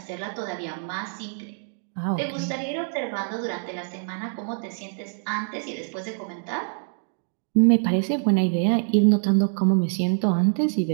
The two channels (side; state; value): left; silent; 62 dB below the other